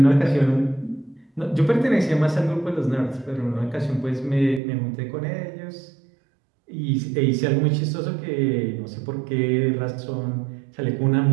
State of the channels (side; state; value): left; drops out; at 4.6 s